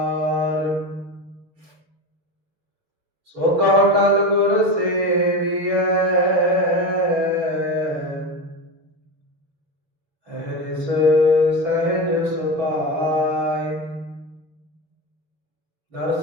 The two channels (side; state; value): left; late; 6.6 ms